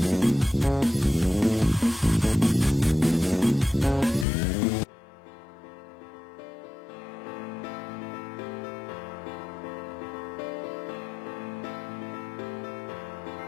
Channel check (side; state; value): right; drops out; at 4.2 s